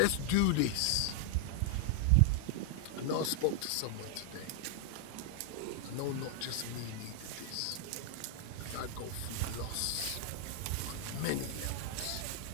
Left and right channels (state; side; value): different; both; correlation 0.00